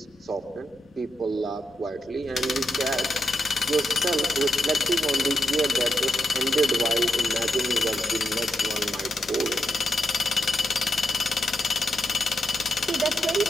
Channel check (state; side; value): normal; both; correlation 0.84